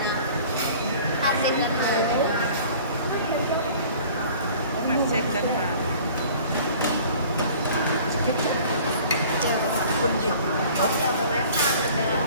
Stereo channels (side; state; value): both; inverted; correlation -0.48